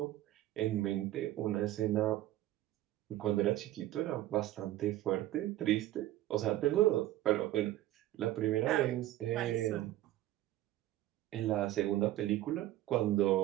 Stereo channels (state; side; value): quieter; left; 14.8 dB